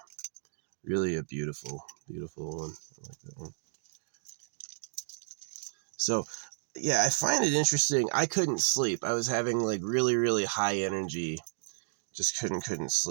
Really a beautiful, beautiful one. I like that one. So, yeah, I find it interesting. I couldn't sleep. I was having like really, really high energy. Just couldn't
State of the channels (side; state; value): left; silent; digital silence